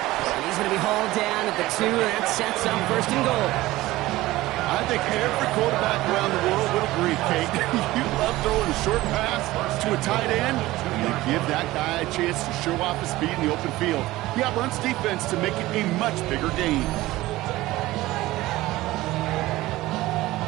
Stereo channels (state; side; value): quieter; left; 17.7 dB